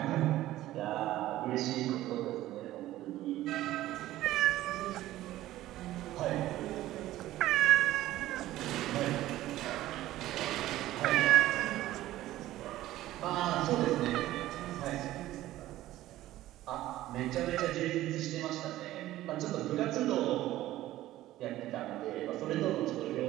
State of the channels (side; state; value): left; quieter; 15.1 dB